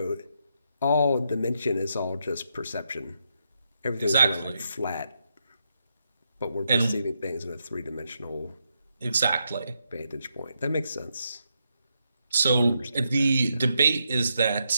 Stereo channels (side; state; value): both; inverted; correlation -0.82